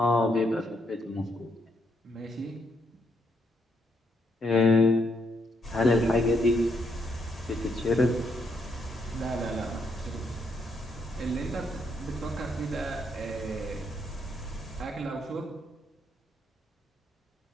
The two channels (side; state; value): both; normal; correlation 0.75